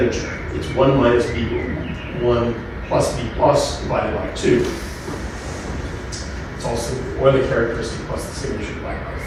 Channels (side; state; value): both; identical; correlation 1.00